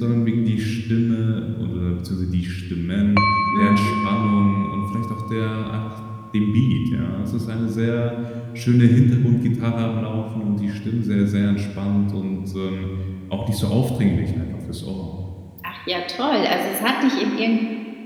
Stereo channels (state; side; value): identical; both; correlation 1.00